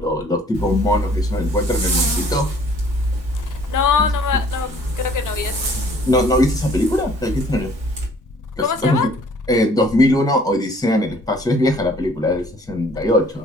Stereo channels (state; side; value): normal; both; correlation 0.56